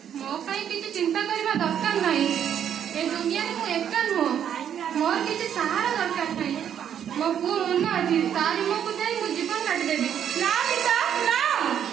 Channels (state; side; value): quieter; left; 9.2 dB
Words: ମୋ ପାଇଁ କିଛି ଚିନ୍ତା କରିବା ଦରକାର ନାହିଁ। ଏ ଦୁନିଆରେ ମୁଁ ଏକା ନୁହଁ। ମୋର କିଛି ସାହାରା ଦରକାର ନାହିଁ। ମୋ ପୁଅ ମନ ଅଛି, ତାରି ମୁହଁକୁ ଯାଇ ମୁଁ ଜୀବନ କାଟିଦେବି। ନା ମିତା, ନା।